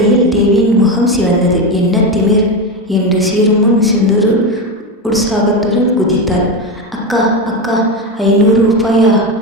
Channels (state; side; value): normal; both; correlation 0.15